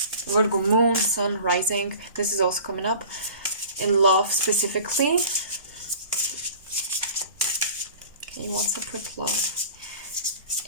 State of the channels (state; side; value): inverted; both; correlation -0.43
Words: Virgo moon, sun rising. This is also coming up in love specifically. Okay, what's up with love?